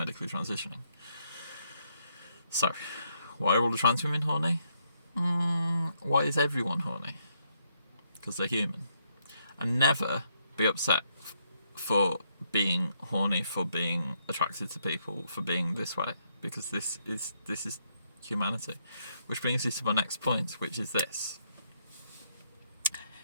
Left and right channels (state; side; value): inverted; both; correlation -0.75